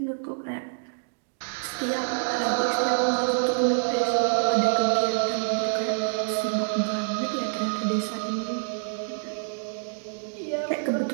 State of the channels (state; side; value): silent; left; digital silence